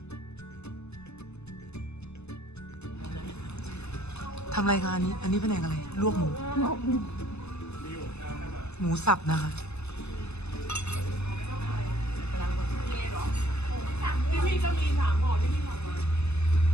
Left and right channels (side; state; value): right; late; 0.80 ms